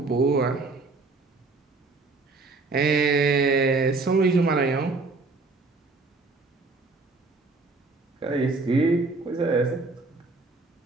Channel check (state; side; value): quieter; left; 3.7 dB